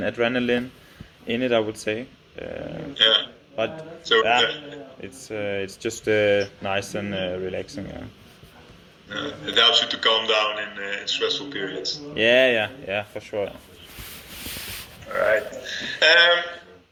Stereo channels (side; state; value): both; identical; correlation 1.00